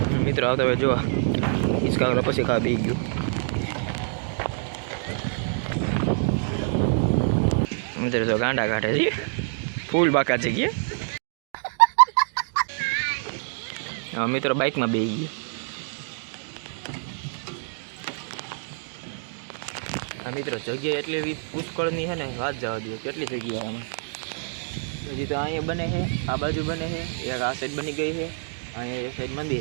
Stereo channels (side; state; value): left; silent; digital silence